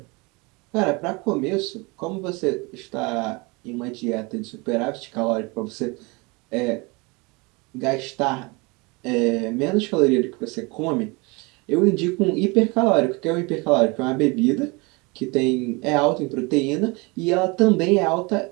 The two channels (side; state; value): left; quieter; 27.2 dB